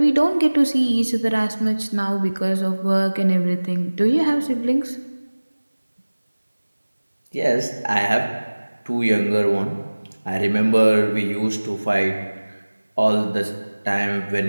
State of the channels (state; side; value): inverted; both; correlation -1.00